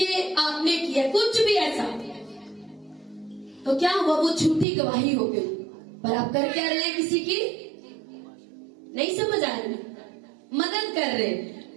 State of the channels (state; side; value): drops out; left; at 4.7 s